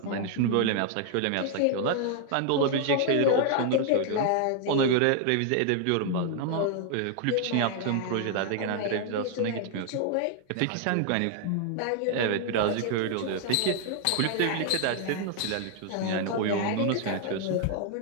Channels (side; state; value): both; different; correlation 0.00